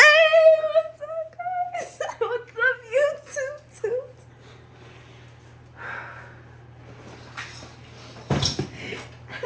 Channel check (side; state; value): both; identical; correlation 1.00